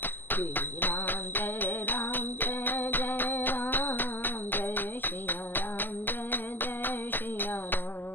श्री राम जय राम जय जय राम, जय सिया राम जय जय सिया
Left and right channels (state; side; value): late; right; 0.091 ms